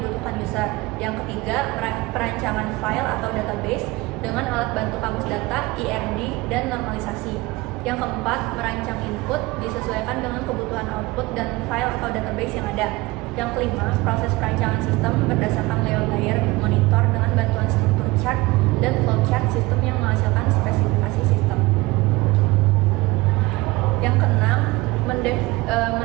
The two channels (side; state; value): left; quieter; 21.6 dB